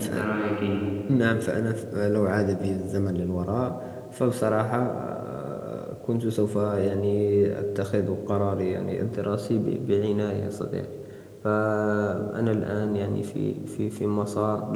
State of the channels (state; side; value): identical; both; correlation 1.00